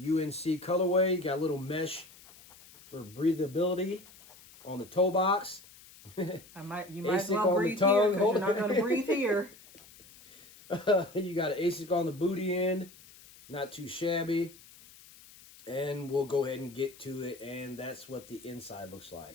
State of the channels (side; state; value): left; noise; hiss, 22 dB below the sound